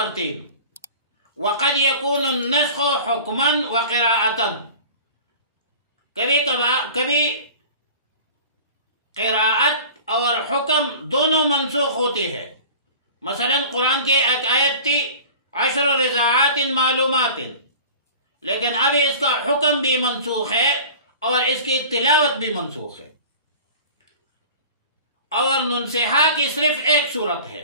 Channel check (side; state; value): both; inverted; correlation -0.40